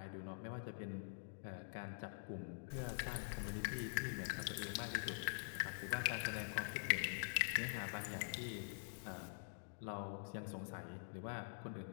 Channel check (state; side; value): silent; right; digital silence